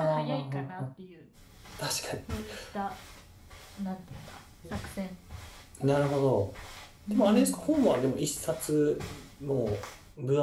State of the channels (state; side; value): identical; both; correlation 1.00